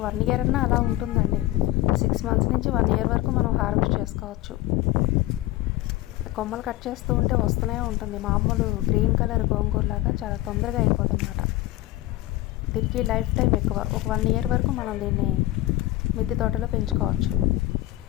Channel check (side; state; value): right; quieter; 16.9 dB